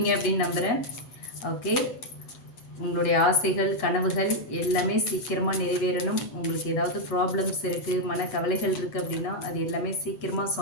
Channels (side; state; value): right; late; 8.3 ms